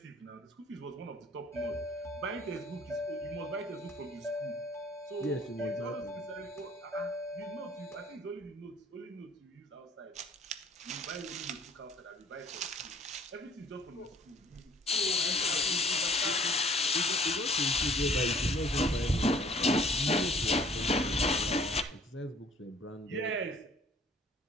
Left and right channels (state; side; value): normal; both; correlation 0.56